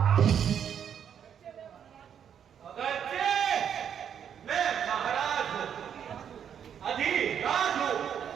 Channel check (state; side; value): quieter; left; 8.5 dB